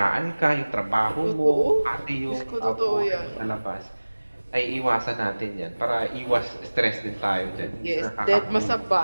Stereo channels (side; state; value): both; inverted; correlation -1.00